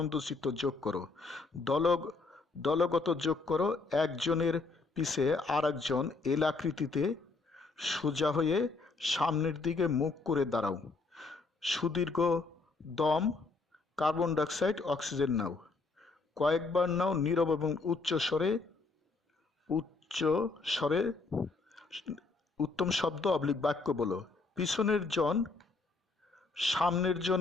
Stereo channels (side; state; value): right; quieter; 3.9 dB